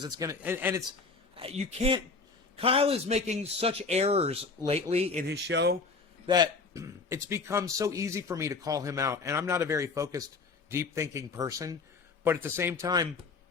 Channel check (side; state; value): right; quieter; 4.3 dB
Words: It's going to, and it's, you can't, Kyle is making such errors lately in his show that it's become so easy for me to call him out. And I'm not a very focused, deep thinking person, but at the same time,